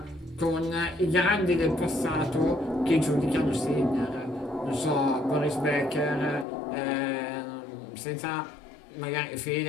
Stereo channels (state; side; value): drops out; right; at 6.5 s